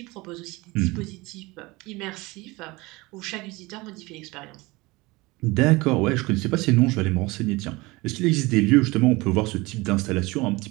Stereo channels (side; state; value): left; quieter; 22.7 dB